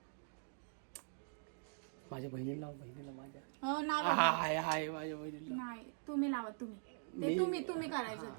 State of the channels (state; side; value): silent; left; digital silence